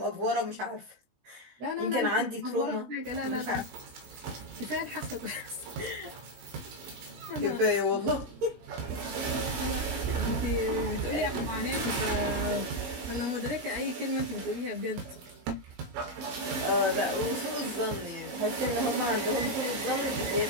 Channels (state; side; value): late; left; 16 ms